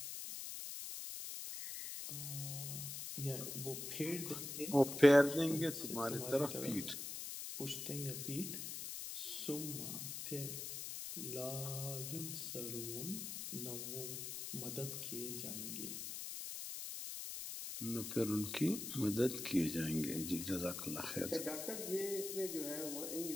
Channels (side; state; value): left; noise; hiss, 6 dB below the sound